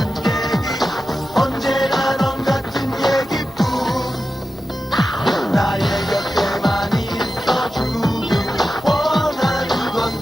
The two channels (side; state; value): both; normal; correlation 0.92